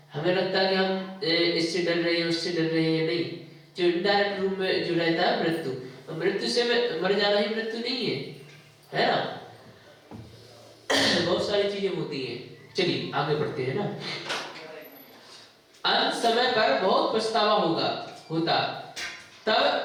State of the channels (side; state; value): both; identical; correlation 1.00